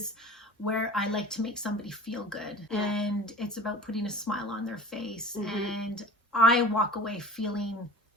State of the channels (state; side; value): normal; both; correlation 0.40